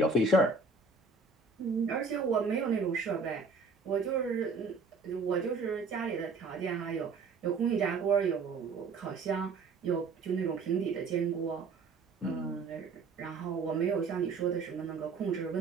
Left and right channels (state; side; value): quieter; left; 4.3 dB